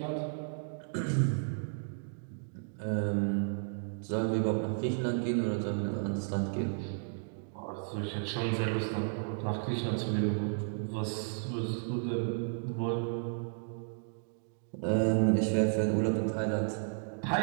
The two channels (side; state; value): left; silent; digital silence